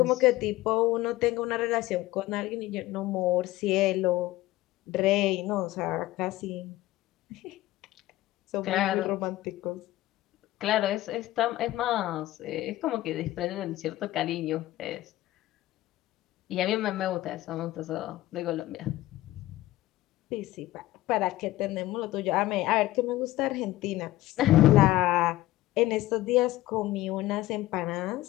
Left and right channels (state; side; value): quieter; right; 16.6 dB